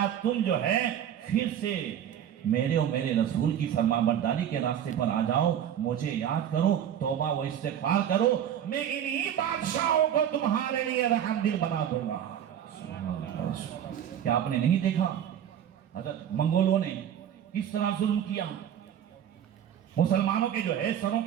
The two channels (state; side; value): quieter; left; 9.8 dB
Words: تم جو ہے پھر سے میرے اور میرے رسول کی فرمانبرداری کے راستے پر آ جاؤ، مجھے یاد کرو، توبہ و استغفار کرو، میں انہی بادشاہوں کو تمہارے لیے رحم دل بنا دوں گا۔ کیا آپ نے نہیں دیکھا حضرت منگولوں نے کس طرح ظلم کیا؟ مسلمانوں کے جو ہے سروں